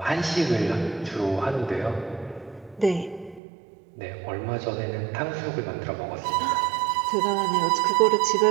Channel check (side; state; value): left; drops out; at 3.4 s